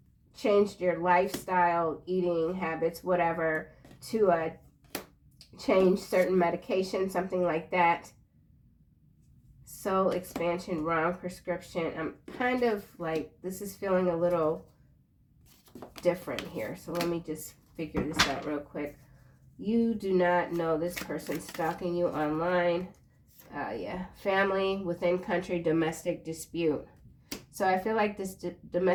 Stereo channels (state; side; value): identical; both; correlation 1.00